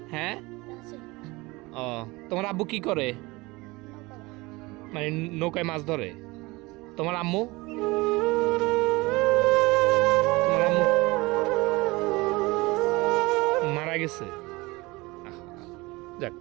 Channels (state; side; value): quieter; left; 22.8 dB